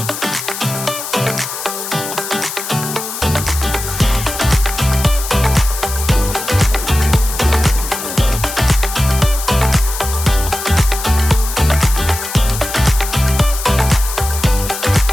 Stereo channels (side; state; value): left; noise; hiss, 7 dB below the sound